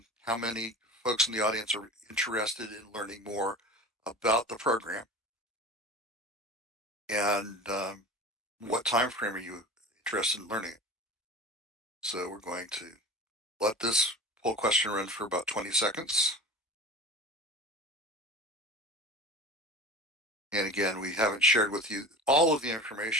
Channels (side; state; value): both; normal; correlation 0.35